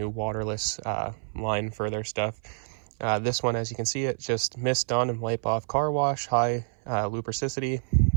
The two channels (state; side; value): silent; left; 60 dB below the other